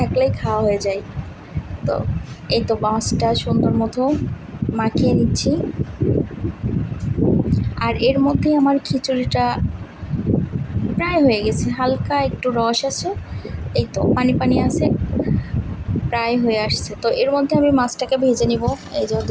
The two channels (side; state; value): both; identical; correlation 1.00